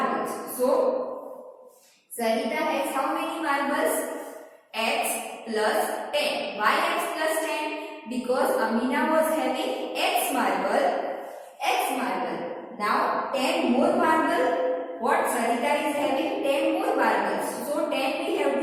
So Sarita has how many marbles? X plus 10. Why x plus 10? Because Amina was having x marble. Now 10 more marble. What Sarita is having? 10 more marbles. So 10 we have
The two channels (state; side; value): identical; both; correlation 1.00